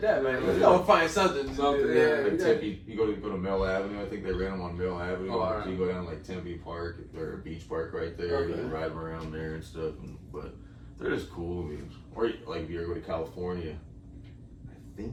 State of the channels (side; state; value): both; identical; correlation 1.00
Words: that, man. Yeah. You gotta find something. Yeah, like Tempe, you go to Mill Avenue. I think they rent them on Mill Avenue. Oh, right. So you go down to like Tempe Park or Beach Park right there. Okay. You can ride them around there and stuff. But they're just cool. I mean, or like if you ever go to California, I